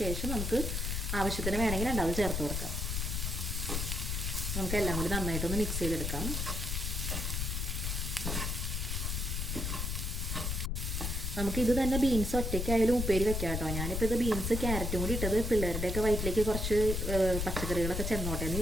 ശേഷം നമുക്ക് ആവശ്യത്തിന് വേണമെങ്കിൽ 2 ചേർത്ത് കൊടുക്കാം. നമുക്കെല്ലാം കൂടി നന്നായിട്ടൊന്ന് മിക്സ് ചെയ്തെടുക്കാം. നമുക്കിത് തന്നെ ബീൻസ് ഒറ്റയ്ക്കായാലും ഉപ്പേരി വെക്കാം കേട്ടോ. ഞാനിപ്പോൾ ഇത് ബീൻസ് ക്യാരറ്റും കൂടി ഇട്ടത് പിള്ളേരുടെയൊക്കെ വയറ്റിലേക്ക് കുറച്ച് പച്ചക്കറികളൊക്കെ ചെന്നോട്ടെ എന്ന്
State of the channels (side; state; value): left; noise; rumble, 1 dB below the sound